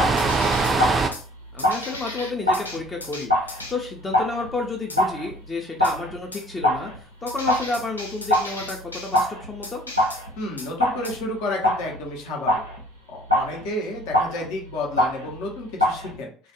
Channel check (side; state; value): both; normal; correlation 0.53